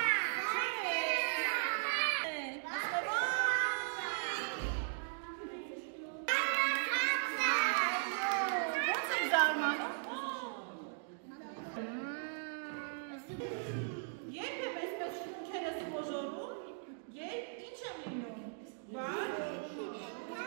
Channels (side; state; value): left; silent; digital silence